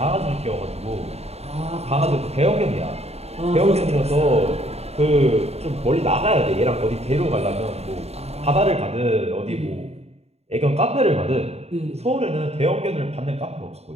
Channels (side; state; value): left; late; 0.30 ms